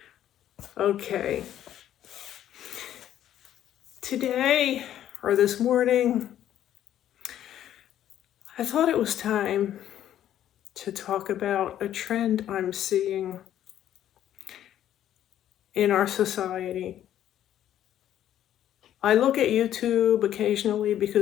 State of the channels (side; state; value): right; quieter; 11.4 dB